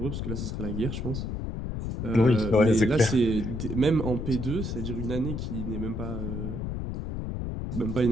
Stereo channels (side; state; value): left; noise; rumble, 4 dB below the sound